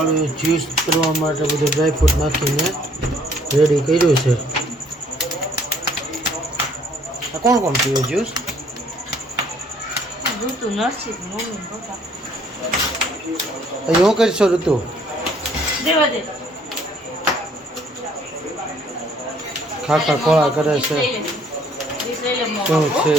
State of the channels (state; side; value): normal; both; correlation 0.62